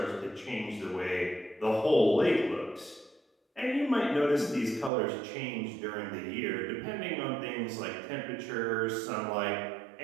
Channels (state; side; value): drops out; left; at 4.9 s